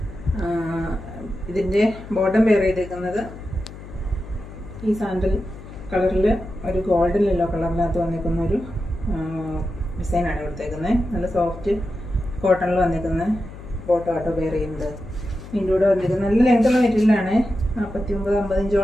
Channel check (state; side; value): noise; left; hum, 14 dB below the sound